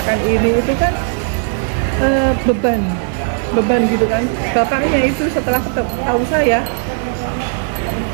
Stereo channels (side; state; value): left; silent; digital silence